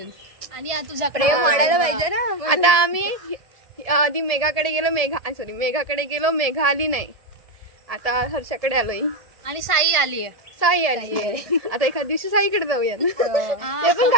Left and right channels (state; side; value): late; left; 1.7 ms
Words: आणि तुझ्याकडे वाढायला पाहिजे ना. आता आम्ही आधी मेघाकडे गेलो, मेघाकडे गेलो, मेघा आली नाही. आता हर्षाकडे आलोय आणि साई आली आहे. आता एखाद दिवशी साईकडे जाऊया. ते पण